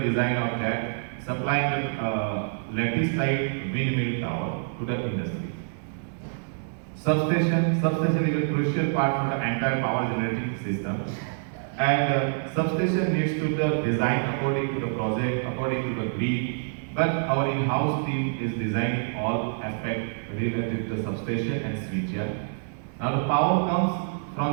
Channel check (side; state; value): left; silent; digital silence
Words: of that, supplying the lattice type windmill tower to the industry. Substation is a crucial part for the entire power generating system, and substation needs to be designed according to the project, according to the grid. But our in-house team is designing all aspects related to the substation and switchyard. Now the power comes from